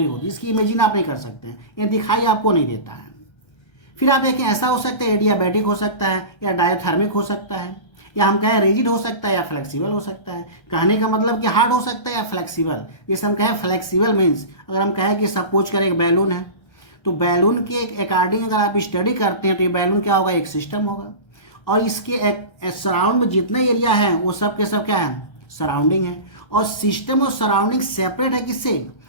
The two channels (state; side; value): late; right; 1.3 ms